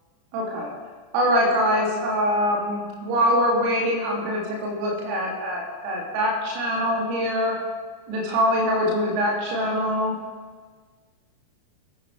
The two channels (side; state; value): left; late; 34 ms